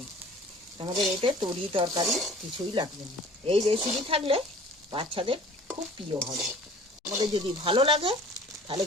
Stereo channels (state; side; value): normal; both; correlation 0.47